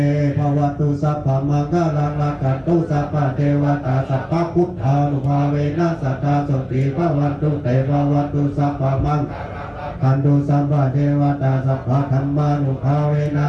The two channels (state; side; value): identical; both; correlation 1.00